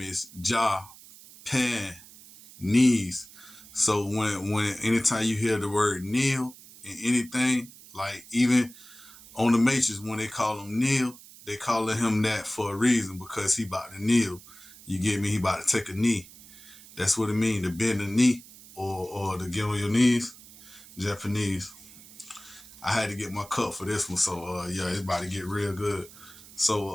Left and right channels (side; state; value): right; noise; hiss, 20 dB below the sound